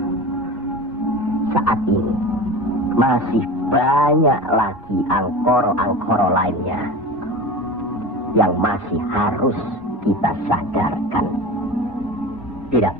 Saat ini masih banyak lagi angkoro-angkoro lainnya yang masih harus kita sadarkan.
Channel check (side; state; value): both; normal; correlation 0.32